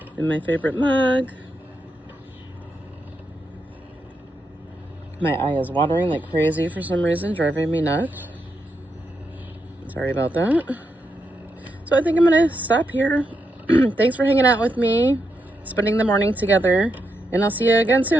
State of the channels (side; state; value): both; normal; correlation 0.83